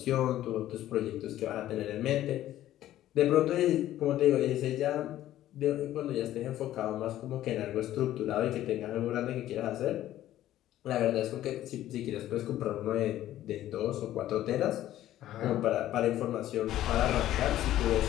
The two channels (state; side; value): quieter; right; 13.3 dB